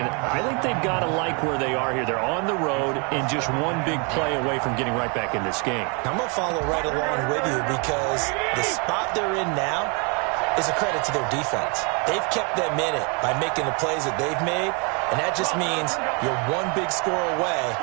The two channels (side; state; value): left; quieter; 33.8 dB